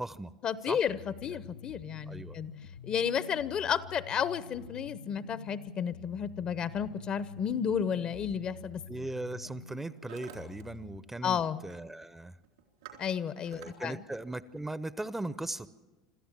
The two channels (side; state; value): right; quieter; 5.7 dB